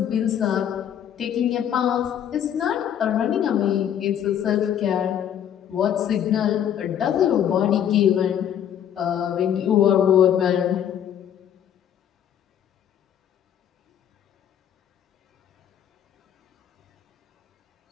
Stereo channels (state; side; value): quieter; right; 9.6 dB